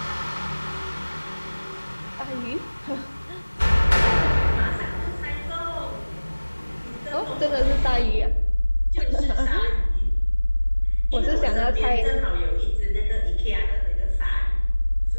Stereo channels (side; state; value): both; inverted; correlation -1.00